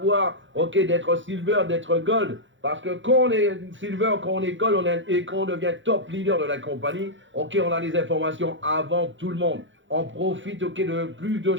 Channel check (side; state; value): left; late; 0.55 ms